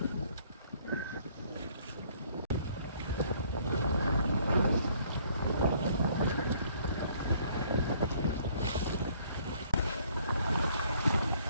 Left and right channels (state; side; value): inverted; both; correlation -0.62